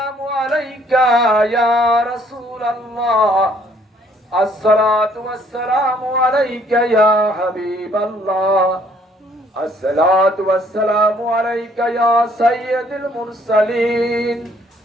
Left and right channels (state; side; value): normal; both; correlation 0.63